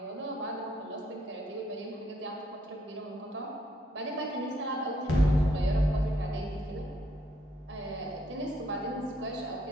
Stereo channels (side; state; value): both; normal; correlation 0.70